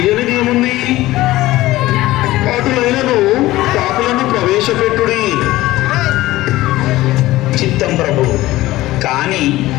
ఏముంది? అటులైనను పాపులను ప్రవేశపెట్టుడి. చిత్తం ప్రభు. కానీ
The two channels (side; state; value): right; quieter; 17.1 dB